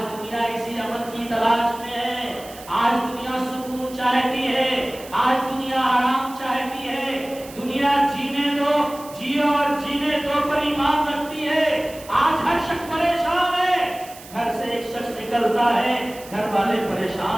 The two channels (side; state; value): right; noise; hiss, 18 dB below the sound